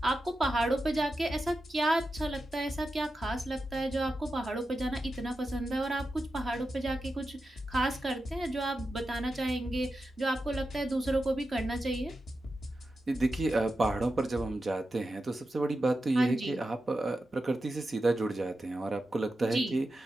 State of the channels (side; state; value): both; normal; correlation 0.90